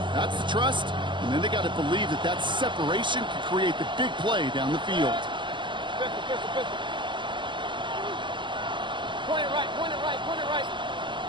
that's the trust, and then they got to believe that that separation can create the big play down the field. 50. Point it right.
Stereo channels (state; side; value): late; left; 0.23 ms